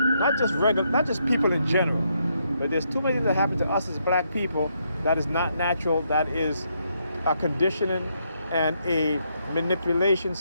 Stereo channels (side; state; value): both; inverted; correlation -0.77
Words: not just people in general, but there's too many things that happen to us as black people that is not natural, that is a conditioning and a manipulation